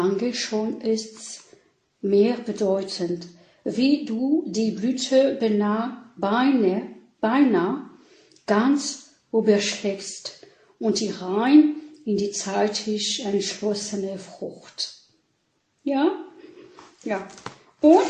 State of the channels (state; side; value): identical; both; correlation 1.00